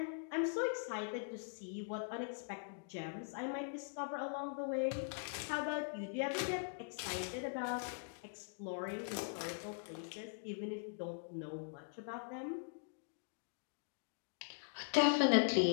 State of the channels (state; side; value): silent; right; digital silence